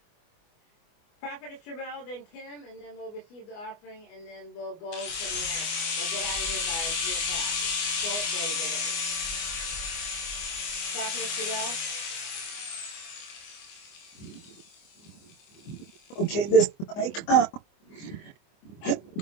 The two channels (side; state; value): right; late; 24 ms